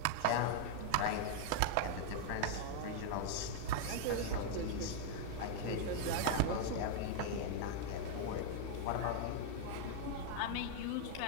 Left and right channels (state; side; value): different; both; correlation 0.00